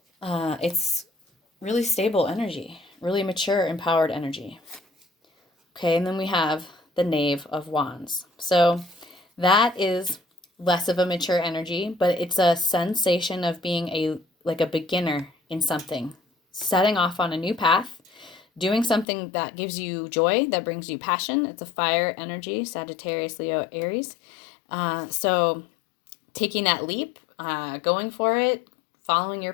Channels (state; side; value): drops out; right; at 19.1 s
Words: It's really stable energy, really mature, empowered energy. Okay, and then we have the Knave of Wands. So that is less of a mature energy, but it's a sensation of being a beginner in something, setting off on a new path, doing something that gives you joy, that brings you passion. It's a fire energy, Sagittarius, Leo, Aries. So taking that leap, going for it, following your